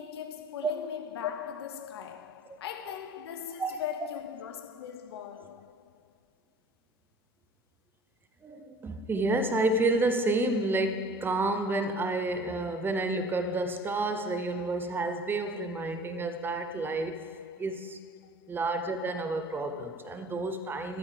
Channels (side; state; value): both; normal; correlation 0.48